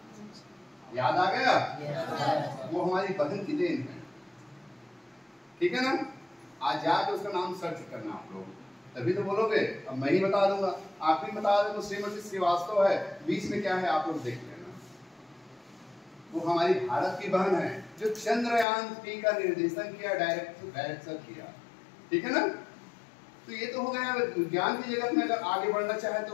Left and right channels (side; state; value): right; drops out; at 18.7 s